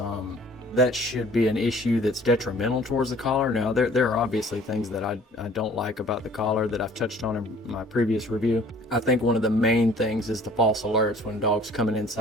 that should be an issue that's detrimental towards the collar. Now, there are obviously things that I don't like about the collar that I've touched on in my previous review. I think one of the main things is the false alerts when dog's coming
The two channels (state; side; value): normal; both; correlation 0.52